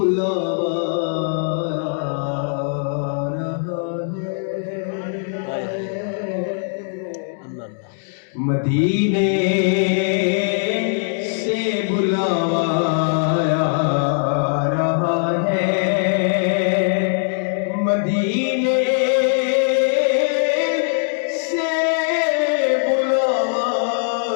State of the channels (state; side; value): silent; right; digital silence